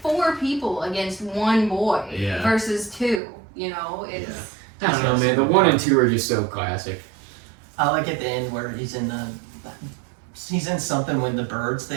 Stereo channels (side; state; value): left; drops out; at 3.2 s